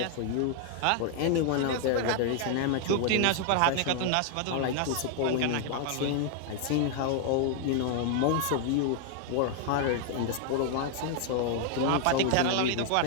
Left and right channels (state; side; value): different; both; correlation 0.00